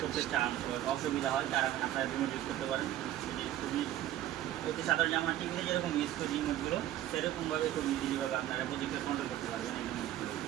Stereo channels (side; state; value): left; quieter; 13.0 dB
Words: করতে চান, অসুবিধা হয়, তারা আপনারা রিমোট ইউজ করতে পারেন। খুবই অতি সাধারণ আমরা টিভিতে যেরকম ইউজ করি রিমোটগুলো, সেরকমভাবে খুব ইজিলিভাবে আপনারা প্রজেক্টর কন্ট্রোল করতে পারবেন এই রিমোটগুলো।